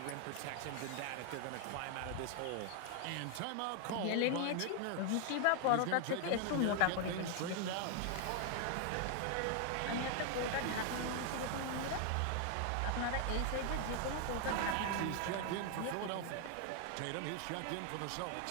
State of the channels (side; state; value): both; different; correlation 0.00